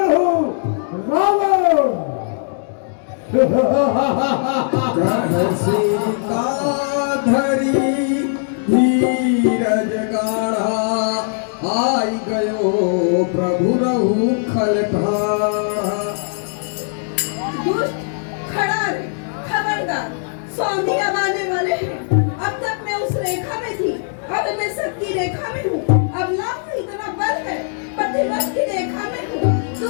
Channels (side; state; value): right; silent; 66 dB below the other